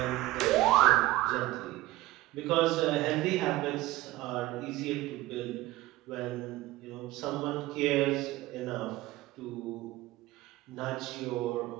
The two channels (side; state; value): left; quieter; 17.7 dB